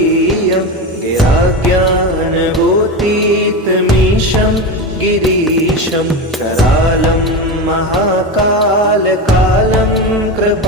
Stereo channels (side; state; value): both; normal; correlation 0.20